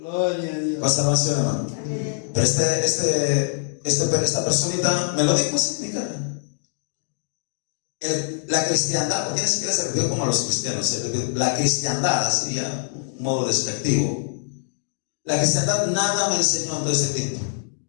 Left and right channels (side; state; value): right; silent; digital silence